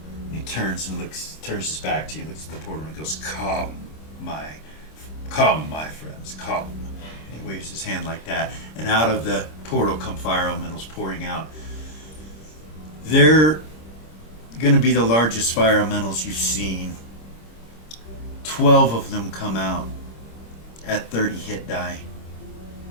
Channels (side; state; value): right; late; 26 ms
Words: And he turns and turns his back to you, looks at the portal and goes, come, my friends, come. And he waves his hand like that. And out of the portal come fire elementals pouring out. They're going to be the largest fire elementals you've seen. 12 of them come out at 30 hit die.